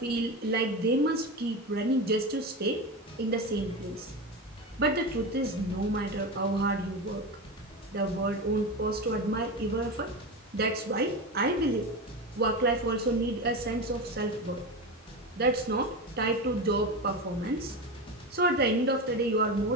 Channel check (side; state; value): both; normal; correlation 0.21